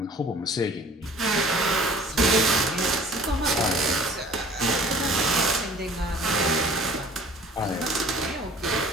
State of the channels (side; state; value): both; normal; correlation 0.49